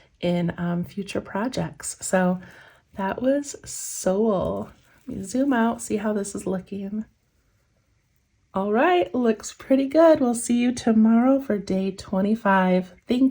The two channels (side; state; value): both; identical; correlation 1.00